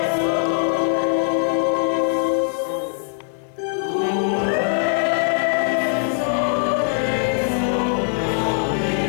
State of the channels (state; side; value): silent; right; digital silence